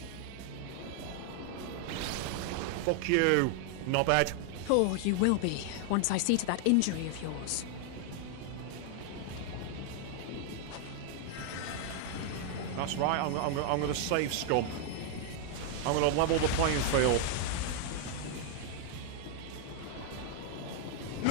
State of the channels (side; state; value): both; different; correlation 0.00